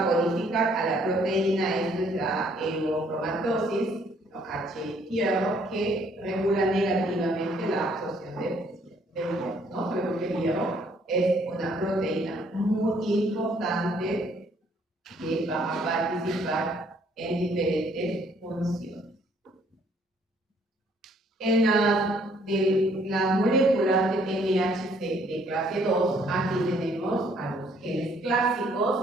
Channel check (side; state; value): both; normal; correlation 0.64